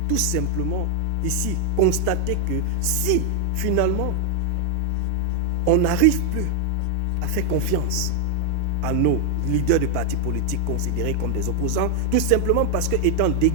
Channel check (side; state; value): both; different; correlation 0.00